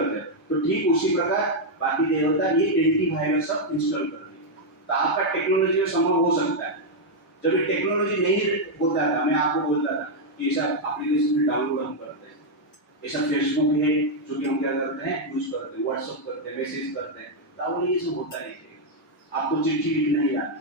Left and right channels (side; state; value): both; normal; correlation -0.01